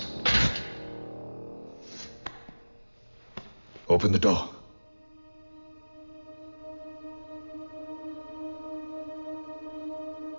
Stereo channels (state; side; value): inverted; both; correlation -1.00